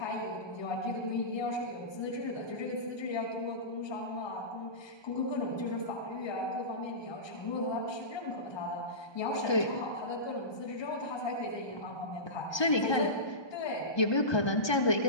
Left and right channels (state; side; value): late; right; 1.2 ms